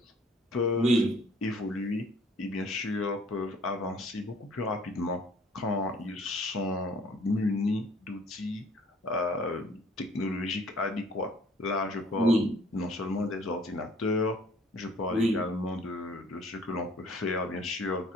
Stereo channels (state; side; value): normal; both; correlation 0.56